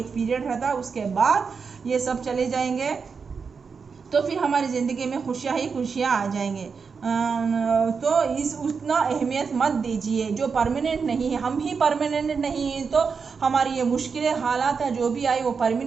पीरियड रहता, उसके बाद ये सब चले जाएंगे, तो फिर हमारी ज़िंदगी में खुशियाँ ही खुशियाँ आ जाएंगे। तो इस उतना अहमियत मत दीजिए, जो परमानेंट नहीं है। हम ही परमानेंट नहीं हैं, तो हमारी ये मुश्किलें हालात है जो भी आए वो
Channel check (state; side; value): quieter; left; 5.5 dB